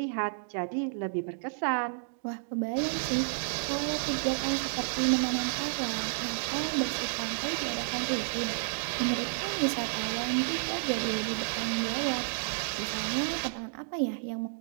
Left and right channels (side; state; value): left; silent; digital silence